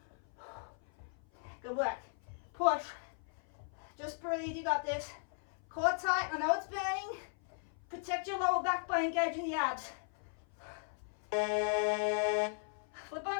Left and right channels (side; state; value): right; silent; 53 dB below the other